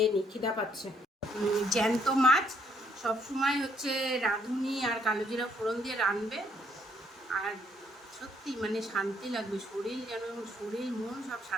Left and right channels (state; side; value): normal; both; correlation 0.69